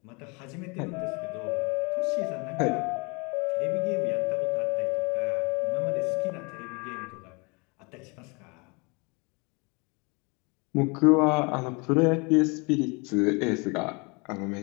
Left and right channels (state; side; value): quieter; right; 30.2 dB